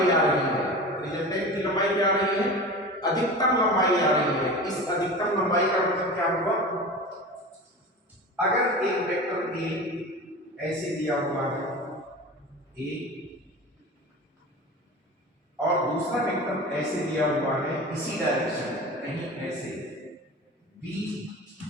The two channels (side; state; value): both; normal; correlation 0.33